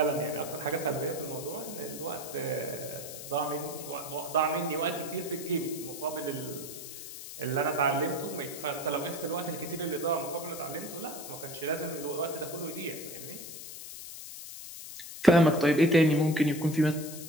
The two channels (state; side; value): noise; left; hiss, 11 dB below the sound